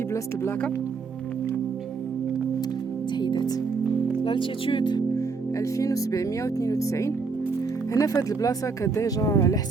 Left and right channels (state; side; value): quieter; left; 4.7 dB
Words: بلاصه البلاكه تحيدات لالتيتود 2792. هنا في هذه البلاصه كديجا على